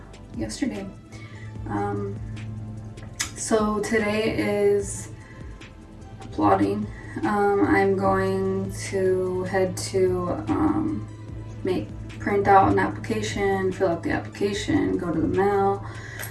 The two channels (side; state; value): both; identical; correlation 1.00